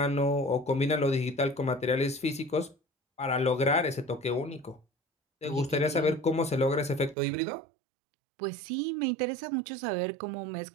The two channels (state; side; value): drops out; left; at 7.2 s